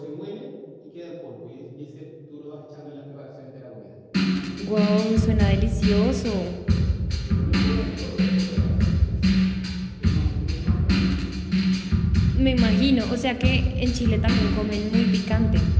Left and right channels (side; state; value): both; identical; correlation 1.00